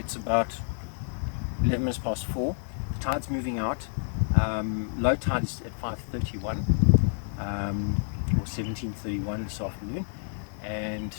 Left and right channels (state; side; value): silent; right; 59 dB below the other